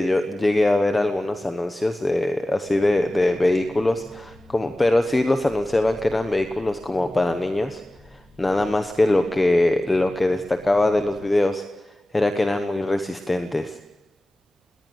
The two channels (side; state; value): both; normal; correlation 0.96